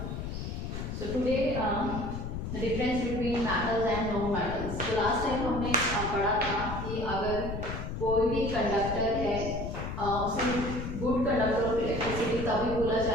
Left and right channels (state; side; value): noise; left; rumble, 5 dB below the sound